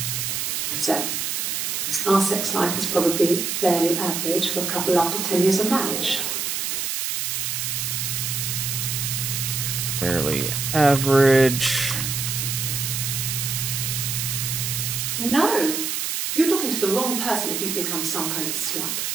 So, our sex life is probably fairly average for a couple after 10 years of marriage. Fairly average. No! You're talking to the wrong person if you think I'm some kind of slut.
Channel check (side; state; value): right; noise; hiss, 1 dB below the sound